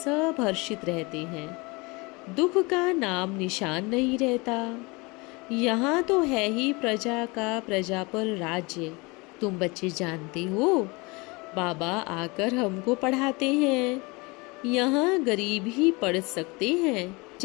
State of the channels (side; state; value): right; quieter; 26.3 dB